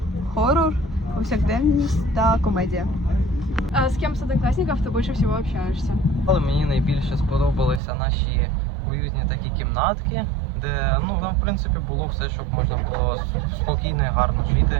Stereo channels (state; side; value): drops out; left; at 7.8 s